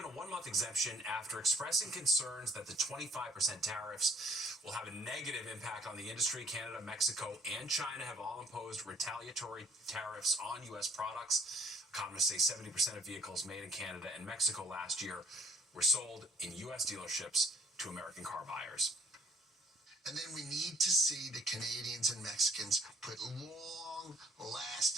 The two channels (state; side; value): normal; both; correlation 0.61